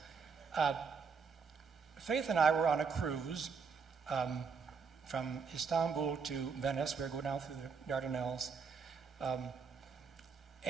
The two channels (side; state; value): left; quieter; 5.5 dB